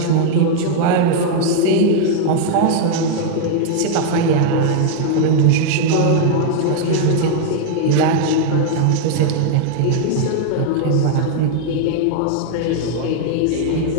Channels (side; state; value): both; different; correlation 0.00